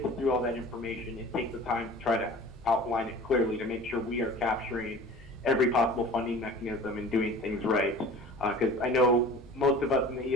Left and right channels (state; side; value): normal; both; correlation 0.42